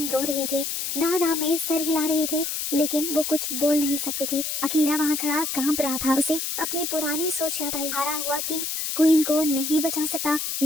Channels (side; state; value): left; noise; hiss, 3 dB below the sound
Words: रो रही थी, ना में सर हिला रही थी, लेकिन वो कुछ बोल नहीं सकती थी। अकीरा वहाँ खड़ा कांप रहा था। उसे अपनी पुरानी सोच याद आई। हारा हुआ किंग क्वीन को नहीं बचा सकता,